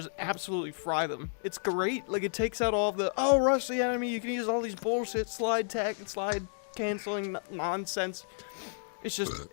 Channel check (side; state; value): right; silent; digital silence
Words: absolutely fry them. It's great. Like it takes out all of the rush the enemy. You can use all these bullshit slide canceling nonsense. It's just,